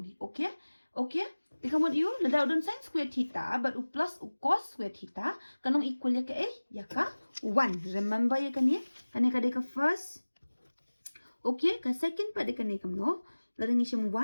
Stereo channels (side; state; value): both; inverted; correlation -1.00